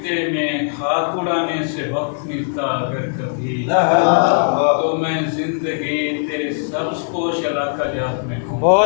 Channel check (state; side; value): silent; right; digital silence